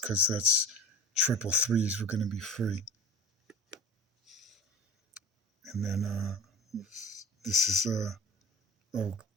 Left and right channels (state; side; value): normal; both; correlation 0.37